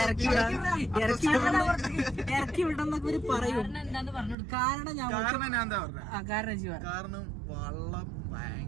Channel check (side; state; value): left; drops out; at 4.4 s